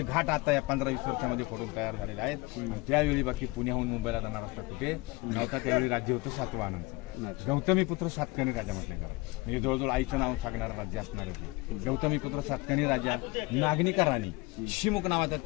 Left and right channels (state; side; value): quieter; right; 23.4 dB